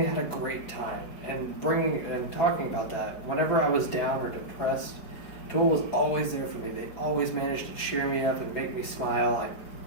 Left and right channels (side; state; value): right; late; 4.9 ms